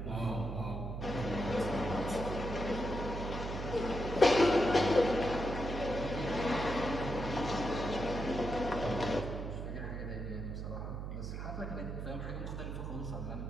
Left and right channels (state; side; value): noise; right; hum, 5 dB below the sound